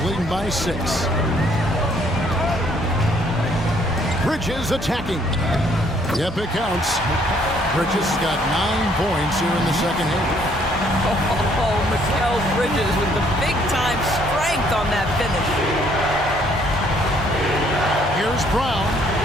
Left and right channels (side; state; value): both; normal; correlation 0.65